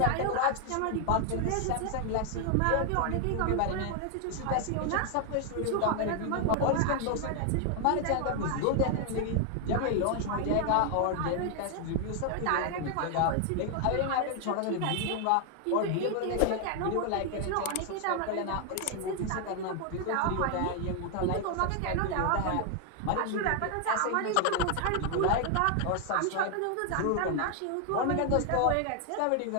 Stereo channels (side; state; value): both; different; correlation 0.00